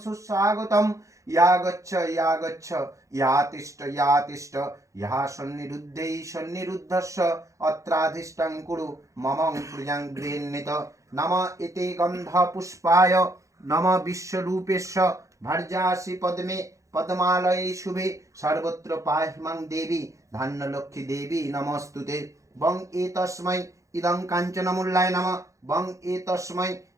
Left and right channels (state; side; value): late; left; 0.15 ms